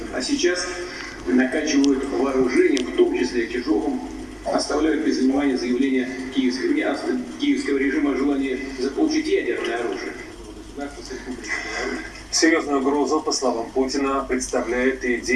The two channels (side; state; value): both; identical; correlation 1.00